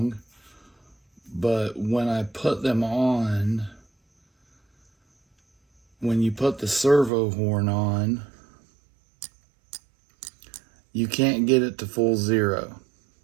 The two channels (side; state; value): left; drops out; at 7.1 s